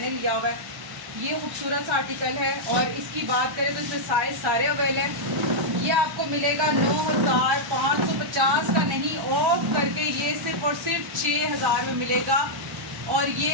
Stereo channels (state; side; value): late; left; 1.1 ms